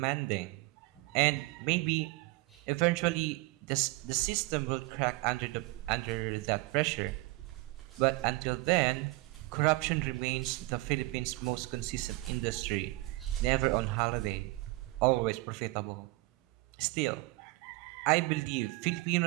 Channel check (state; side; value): quieter; left; 22.2 dB